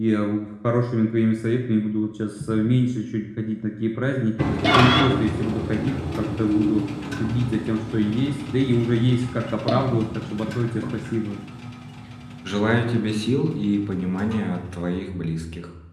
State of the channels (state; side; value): identical; both; correlation 1.00